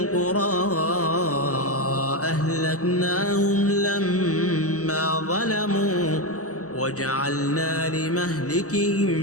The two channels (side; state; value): right; late; 0.66 ms